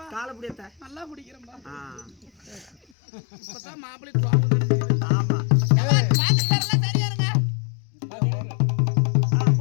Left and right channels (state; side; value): drops out; right; at 2.8 s